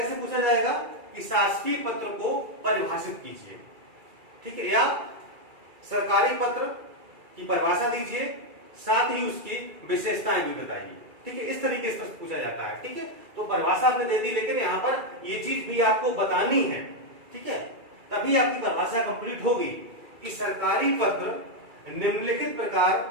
पूछा जाएगा कि शासकीय पत्र को परिभाषित कीजिए। ठीक है, या सरकारी पत्र की परिभाषा दीजिए, साथ ही उसकी विशेषताएं भी बताइए। ठीक है, इस तरीके से पूछा जाता है। ठीक है, तो परिभाषा आपने दे दी, लेकिन यहाँ पर ये चीज भी आपको बतानी है। ठीक है, तभी आपकी परिभाषा कंप्लीट होगी कि सरकारी पत्र निम्नलिखित प्रकार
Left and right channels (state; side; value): late; left; 2.3 ms